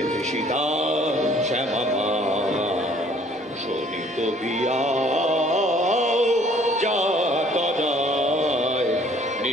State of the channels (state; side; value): normal; both; correlation 0.58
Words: তৃষিতা শ্যামা মা শোনিত বিয়া যা তদায়